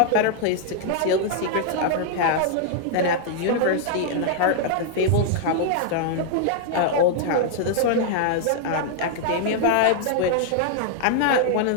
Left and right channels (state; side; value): different; both; correlation -0.01